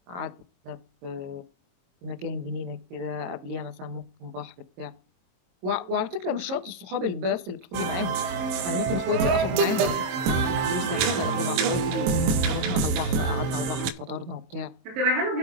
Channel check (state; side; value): late; left; 23 ms